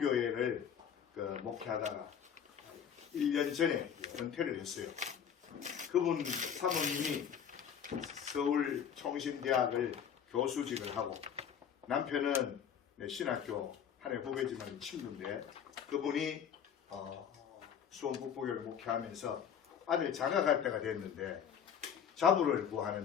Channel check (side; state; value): right; quieter; 8.2 dB